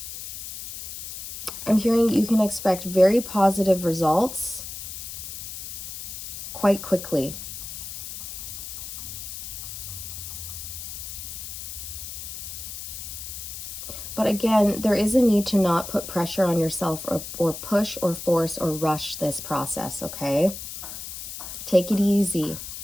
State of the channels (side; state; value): left; noise; hiss, 9 dB below the sound